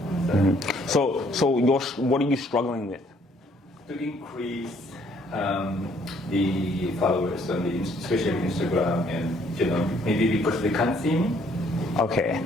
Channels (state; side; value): normal; both; correlation 0.65